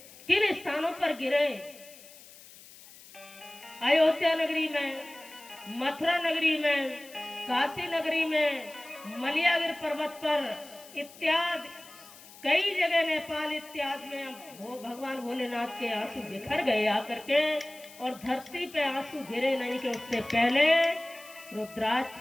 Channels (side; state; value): left; noise; hiss, 20 dB below the sound